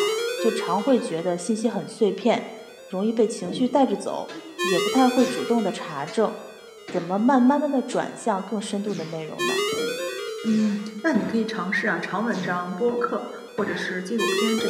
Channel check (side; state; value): both; identical; correlation 1.00